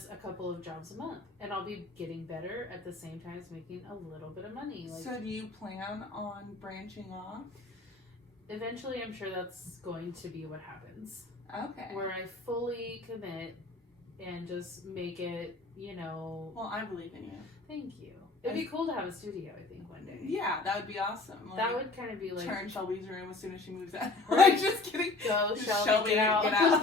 a couple of jobs a month. And I'll be getting better at the same time as making a little bit of money. Like, so do you plan on branching off? Eventually, I'm sure that's going to be what happens. Okay. Where I fully commit and just make it, Well, I believe in you. Thank you. It'd be cool to have a studio, I think, one day. Yeah, that would be awesome. That would kind of be like... Turn Shelby's room as soon as she moves out. Right. Like, just kidding. Go, Shelby, get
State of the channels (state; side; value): quieter; right; 3.4 dB